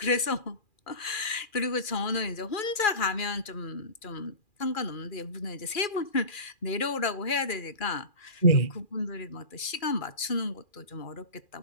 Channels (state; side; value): late; right; 2.4 ms